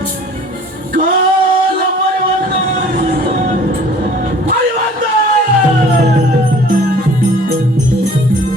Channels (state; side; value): normal; both; correlation 0.50